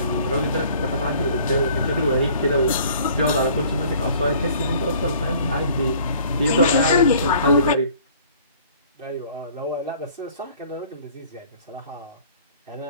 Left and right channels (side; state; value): both; inverted; correlation -0.53